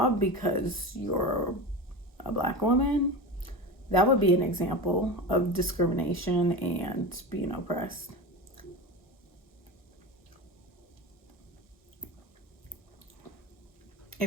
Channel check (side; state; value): both; normal; correlation 0.26